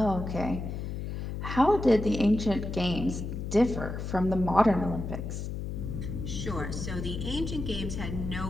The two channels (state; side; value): noise; left; hum, 5 dB below the sound